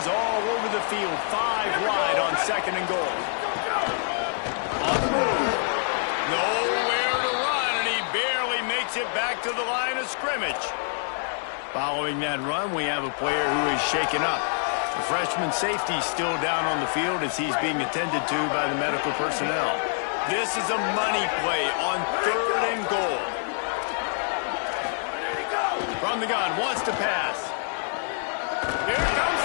all over the field, 5 wide on 2nd and goal. On the move. Nowhere to run, and he barely makes it back to the line of scrimmage. Following that run, we have a player who is shaken up. The freshman safety still down on the field as he's being attended to by the medical personnel. This is a money play on 3rd and goal. From the gun, wants to pass. Here comes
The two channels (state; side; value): silent; right; digital silence